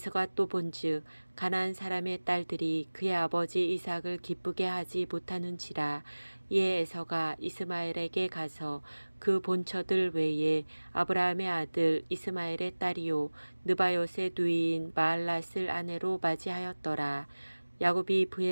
또 본즉 가나안 사람의 딸들이 그의 아버지 이삭을 기쁘게 하지 못하는지라. 이에 에서가 이스마엘에게 가서 그 본처들 외에 아브라함의 아들 이스마엘의 딸이요 느바요의 누이인 마알랏을 아내로 맞이하였더라. 야곱이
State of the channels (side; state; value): both; inverted; correlation -1.00